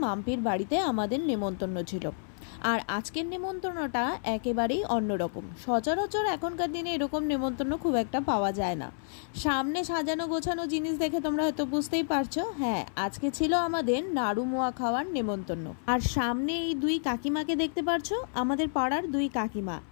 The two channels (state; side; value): silent; right; 58 dB below the other